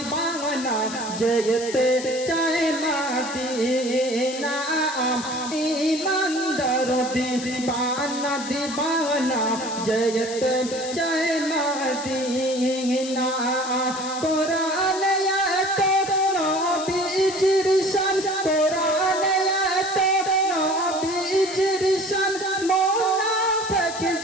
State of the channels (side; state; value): left; noise; hiss, 11 dB below the sound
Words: যেতে চায় মদিনা, ইমানদার দিবানা দিবানা যেতে চায় মদিনা। কোরআনে এত নবীজির শান, কোরআনে এত নবীজির শান, মুনাফিক